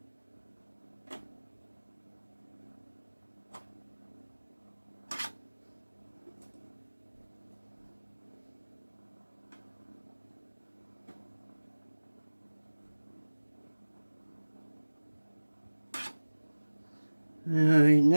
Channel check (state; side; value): inverted; both; correlation -1.00